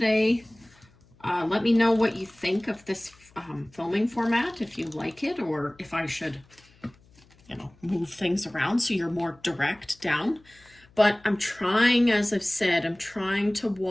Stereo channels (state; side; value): noise; left; hum, 29 dB below the sound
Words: Let me know what you think of this filming format, if you like it, or if I should, move things around so you're more direct down. But I'm trying, as I've said, I'm trying to